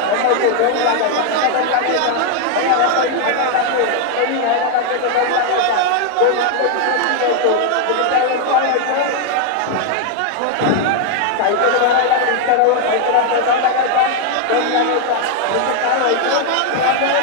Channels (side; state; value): both; different; correlation 0.00